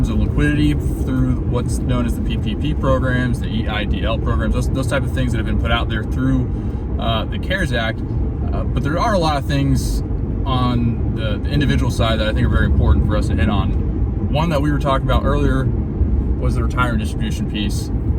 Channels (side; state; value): both; identical; correlation 1.00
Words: of liquidity through what's known as the PPP programs, the EIDL programs, those type of things that have been put out there through the CARES Act. But there are a lot of things on the individual side that I think are very important for us to hit on. One that we were talking about earlier was the retirement distribution piece.